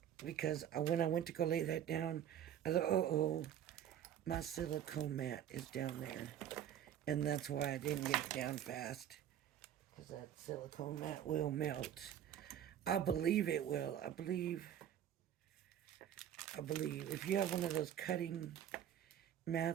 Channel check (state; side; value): quieter; left; 10.2 dB